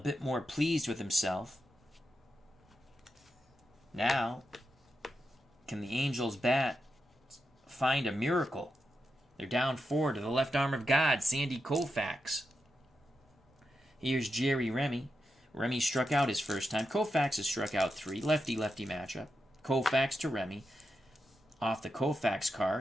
more pleased with himself. Now, can the Angels bat find a miracle? They're down 4 to the left arm of God, Sandy Koufax. Here's Jerry Remy. Remy struck out his first time. Koufax has struck out 3. Lefty-lefty matchup. Koufax to Remy. Off the Koufax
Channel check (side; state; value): both; normal; correlation 0.87